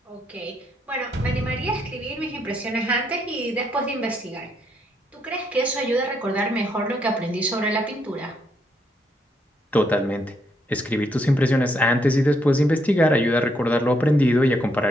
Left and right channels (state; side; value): normal; both; correlation 0.75